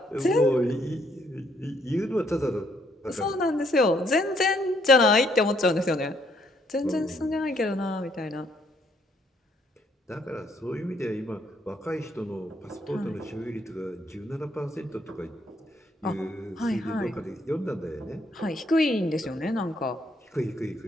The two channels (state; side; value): normal; both; correlation 0.70